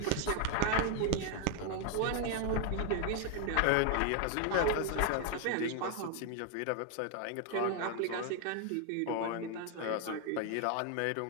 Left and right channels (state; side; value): different; both; correlation 0.00